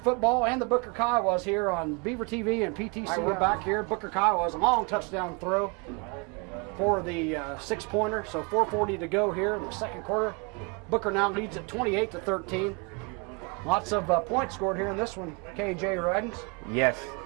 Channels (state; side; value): quieter; left; 31.7 dB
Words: and the Booker Kiowas here on Beaver TV and PTCI. Right, we're back here. Booker Kiowas, a long touchdown throw for the 6-pointer. So 4:40 to go here in the second quarter. Booker now leads at 28-13. Lots of points scored here in this one, KJ Ridings. Yes.